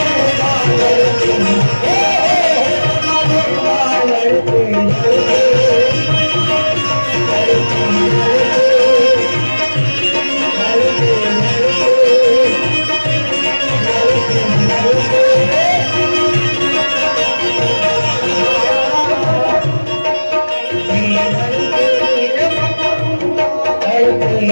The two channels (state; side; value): inverted; both; correlation -1.00